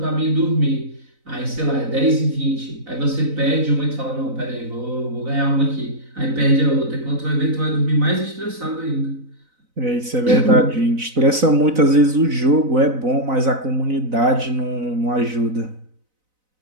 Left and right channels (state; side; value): late; left; 4.0 ms